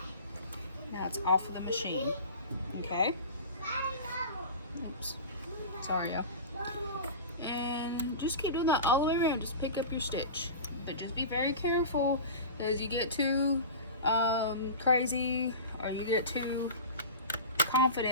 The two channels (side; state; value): both; inverted; correlation -0.31